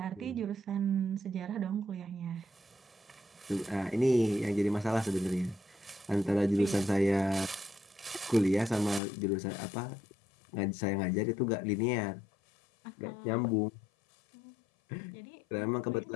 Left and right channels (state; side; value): drops out; right; at 9.0 s